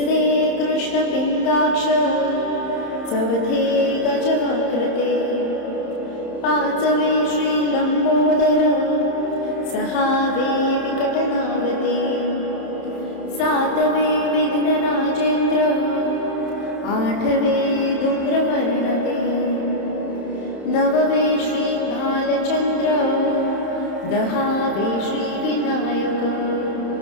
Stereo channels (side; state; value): right; late; 31 ms